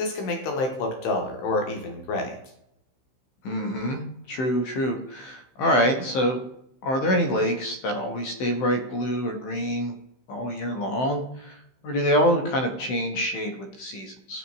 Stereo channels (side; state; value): right; late; 15 ms